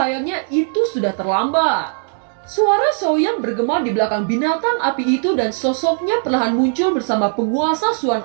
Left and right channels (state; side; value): silent; left; digital silence